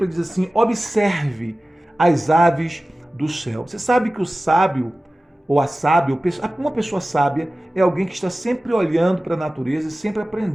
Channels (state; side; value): normal; both; correlation 0.96